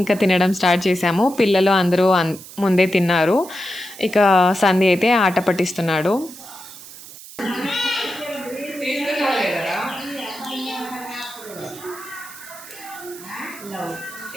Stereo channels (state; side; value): noise; right; hiss, 16 dB below the sound